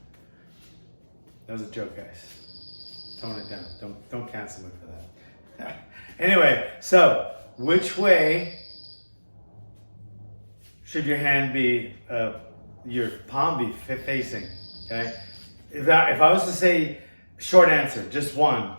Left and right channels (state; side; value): inverted; both; correlation -1.00